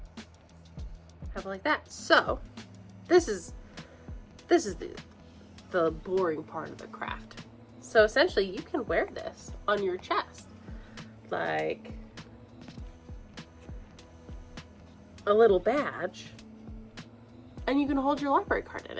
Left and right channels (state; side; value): identical; both; correlation 1.00